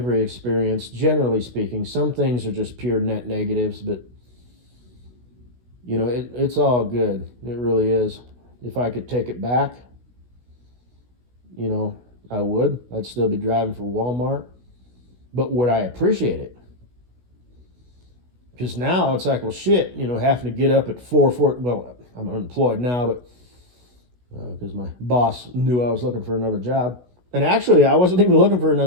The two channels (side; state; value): left; late; 16 ms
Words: experience, generally speaking. Some things are just pure net negatives, but, it's all good. It really is. If I could take it back, I would. I'd still be driving for Walmart. But would I appreciate it? Because now it's like, well, shit, having to get up at 4:40. Well, I'm unemployed now, but because my boss knew I was looking for another job. And actually, I wasn't even looking for